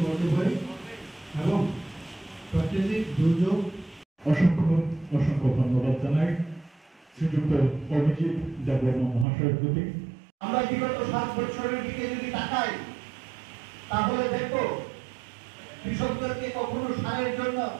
করতে পারি এবং প্রাকৃতিক দুর্যোগ। অসংখ্য অসংখ্য ধন্যবাদ জানাই শ্রীযুক্ত অভিজিৎ দেববর্মা মহাশয়ের প্রতি। আমরা বিগত 7 বছরের দিকে যদি তাকাই তাহলে দেখো কৃষকদেরকে কখনো সারের জন্য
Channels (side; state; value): left; drops out; at 9.2 s